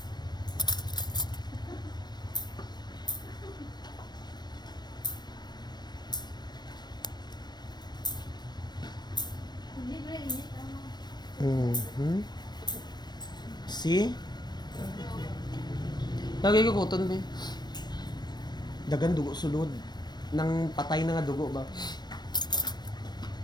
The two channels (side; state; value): right; late; 0.21 ms